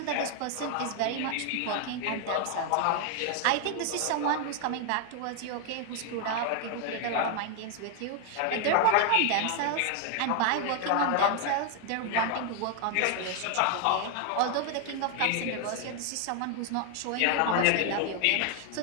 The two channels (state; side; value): different; both; correlation 0.01